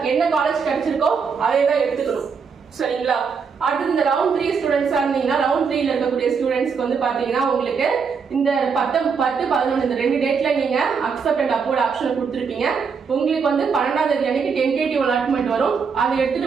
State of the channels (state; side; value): quieter; left; 5.8 dB